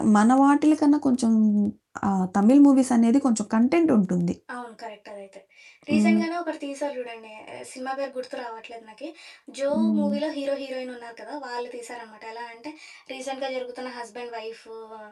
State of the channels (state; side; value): identical; both; correlation 1.00